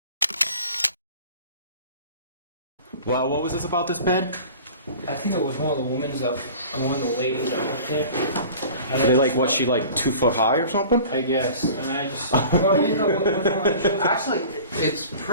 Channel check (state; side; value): inverted; both; correlation -0.42